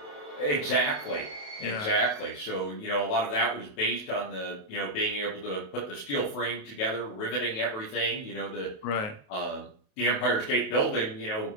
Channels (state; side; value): late; right; 28 ms